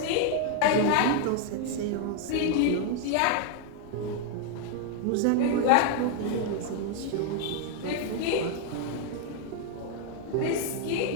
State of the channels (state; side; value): different; both; correlation 0.01